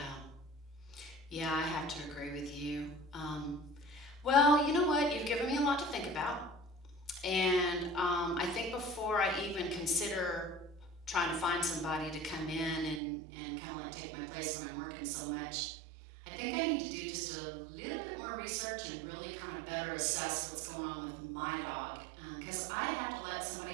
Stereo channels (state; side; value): drops out; left; at 13.0 s